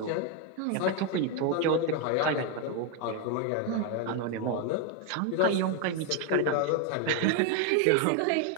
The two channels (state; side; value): different; both; correlation 0.01